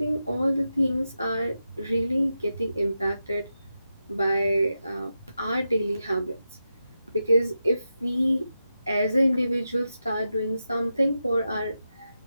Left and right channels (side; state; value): both; inverted; correlation -0.89